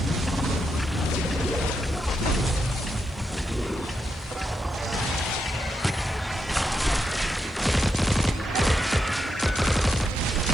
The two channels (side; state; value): left; noise; hiss, 30 dB below the sound